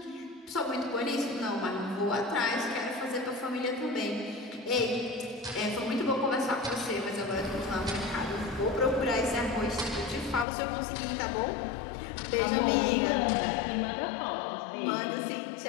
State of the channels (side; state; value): right; drops out; at 10.5 s